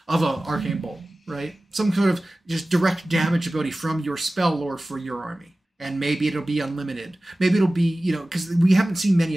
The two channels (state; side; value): normal; both; correlation 0.97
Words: Arcane Bolt, right? Some sort of just direct damage ability from your spell lore for your army. And maybe it'll be unlimited. Maybe it'll be, because we haven't seen many